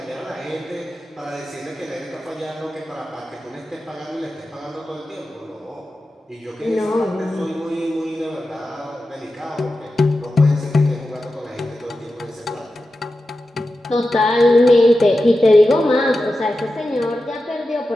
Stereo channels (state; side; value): normal; both; correlation 0.92